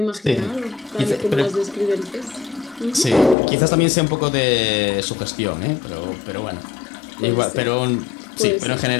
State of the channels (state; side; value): drops out; right; at 3.4 s